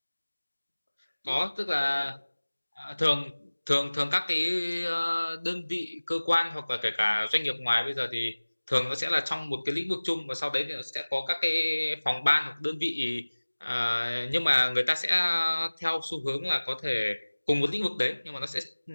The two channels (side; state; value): both; inverted; correlation -1.00